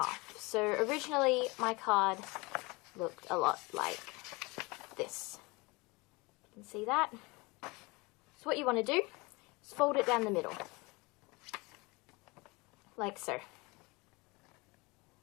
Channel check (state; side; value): quieter; right; 25.4 dB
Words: So originally my card looked a lot like this. You can see that. So what you want to do is fold it down the middle, like so.